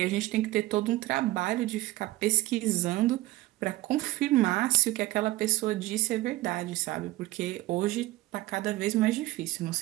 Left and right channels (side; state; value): left; quieter; 17.9 dB